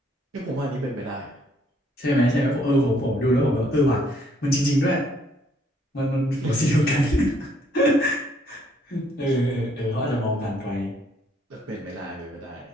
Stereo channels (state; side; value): normal; both; correlation 0.67